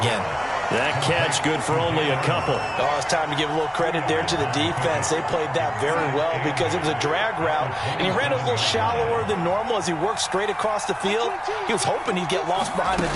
That catch good for only a couple. Oh, it's time to give a little credit there to the defense. They played that very well because it was a drag route, and he ran a little shallower than normal as he worked straight across the field. He was hoping he'd get lost behind the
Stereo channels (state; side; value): identical; both; correlation 1.00